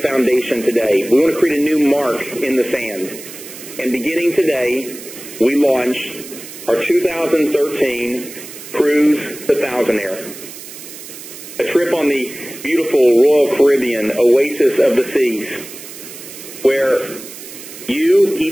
foundation today. We want to create a new mark in the sand. And beginning today, we launch our 2013 Cruise the Thousandaire, a trip on the beautiful Royal Caribbean oasis of the seas, where you,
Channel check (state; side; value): noise; right; hiss, 14 dB below the sound